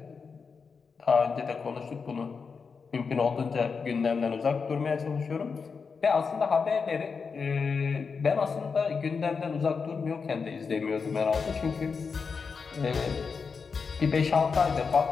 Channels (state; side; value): quieter; right; 5.3 dB